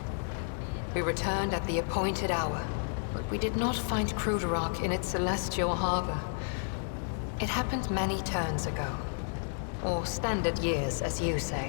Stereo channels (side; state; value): right; silent; digital silence